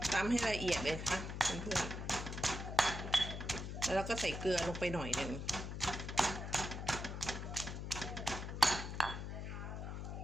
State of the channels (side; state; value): left; noise; hum, 5 dB below the sound